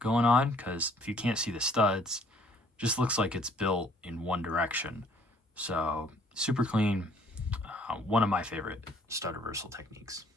on, because if you can't see the studs, it just looks like it's built in one direction. So super clean, one of my favorite stud reversal techniques.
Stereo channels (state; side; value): normal; both; correlation 0.60